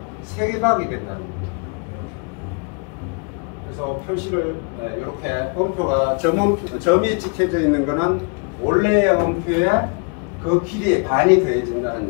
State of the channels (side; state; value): right; quieter; 35.1 dB